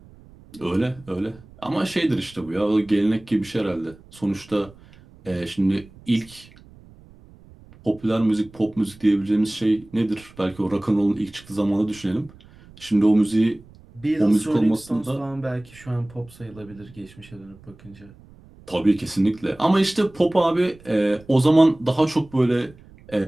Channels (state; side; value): noise; right; rumble, 24 dB below the sound